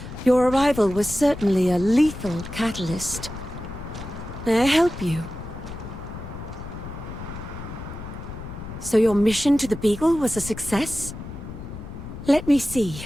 your arrival was certainly a lethal catalyst. May I help you? So your mission to the Beagle was a success? Let me see.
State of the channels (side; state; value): left; noise; rumble, 11 dB below the sound